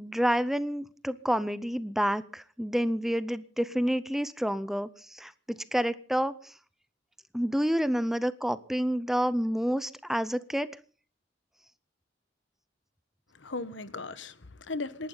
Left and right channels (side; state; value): both; normal; correlation 0.95